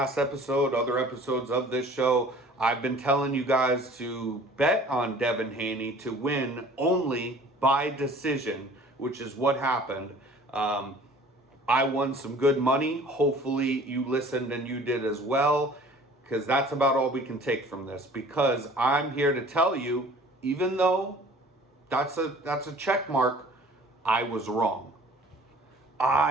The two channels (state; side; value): normal; both; correlation 0.49